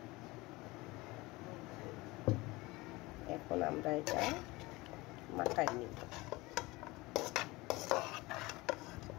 এখন আমরা এটা মাখাই নিব।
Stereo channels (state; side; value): quieter; right; 21.9 dB